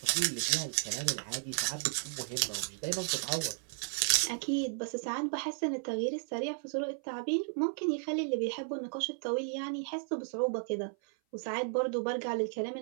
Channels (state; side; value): silent; left; 55 dB below the other